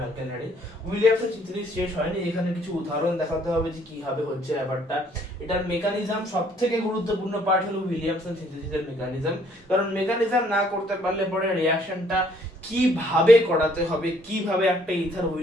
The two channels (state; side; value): normal; both; correlation 0.63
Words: alkyl halide. Williamson synthesis শেষ হয়নি, এখানে কিছু উদাহরণ দেখাতে হবে যে কিভাবে হচ্ছে ব্যাপারটা। এটার মেকানিজম সবথেকে গুরুত্বপূর্ণ পার্ট হলো উইলিয়ামসন সিনথেসিসের মেকানিজম, কারণ মেকানিজম না করতে পারলে পরে রিঅ্যাকশনটা কিভাবে করাতে হবে, কিভাবে একটা ইথার